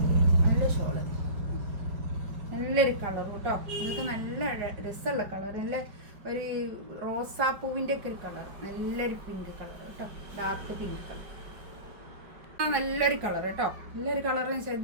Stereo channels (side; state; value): left; late; 5.1 ms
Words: നല്ല ഷോള്, നല്ലൊരു കളർ കേട്ടോ. ഇതൊക്കെ നല്ല രസമുള്ള കളർ, നല്ല ഒരു റോസാപ്പൂവിൻ്റെ ഒക്കെ ഒരു കളർ, നല്ലൊരു പിങ്ക് കളർ കേട്ടോ. ഡാർക്ക് പിങ്ക് കളർ, നല്ലൊരു കളർ കേട്ടോ. നല്ലൊരു കളർ.